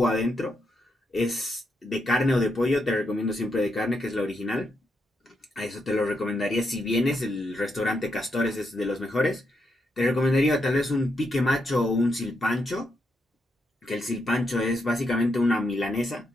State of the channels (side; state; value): both; normal; correlation 0.81